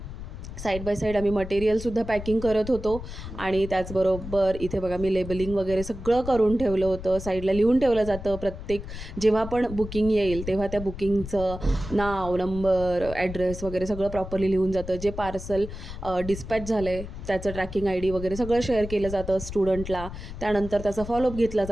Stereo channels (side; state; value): left; noise; rumble, 10 dB below the sound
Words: साईड बाय साईड आम्ही मटेरियलसुद्धा पॅकिंग करत होतो आणि त्याचबरोबर इथे बघा मी लेबलिंग वगैरे सगळं करून ठेवलं होतं. साईडला लिहून ठेवलं जातं प्रत्येक जेव्हा पण बुकिंग येईल तेव्हा त्या बुकिंगचं नाव, नंबर, ॲड्रेस वगैरे सगळं प्रॉपरली लिहून जातं. जे पार्सल डिस्पॅच झालं आहे त्याचं ट्रॅकिंग ID वगैरे सगळं शेअर केलं जातं स्टुडंटला. त्यानंतर त्याचा फॉलोअप घेतला